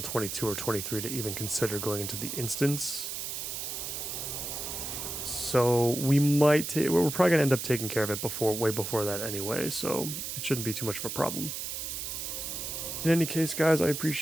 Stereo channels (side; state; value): right; noise; hiss, 5 dB below the sound